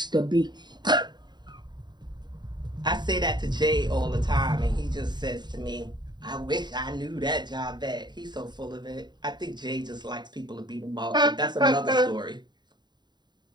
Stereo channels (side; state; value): left; late; 0.21 ms